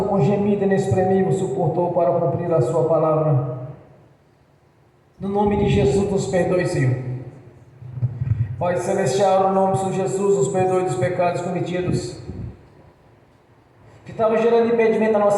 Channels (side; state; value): both; identical; correlation 1.00